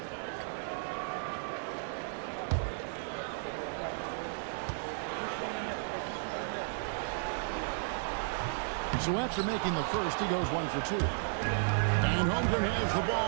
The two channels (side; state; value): left; silent; digital silence